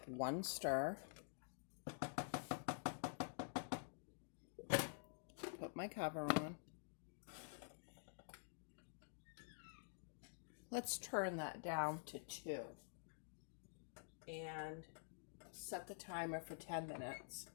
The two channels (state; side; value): silent; right; digital silence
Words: one stir. Put my cover on. Let's turn that down to 2 and set the timer for 10 minutes.